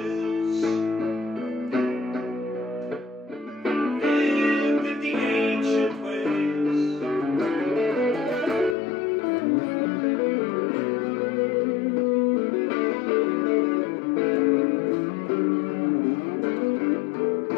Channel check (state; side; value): drops out; right; at 8.8 s